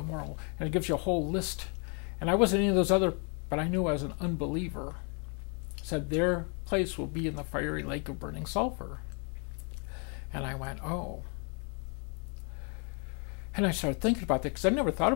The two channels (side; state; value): right; quieter; 37.9 dB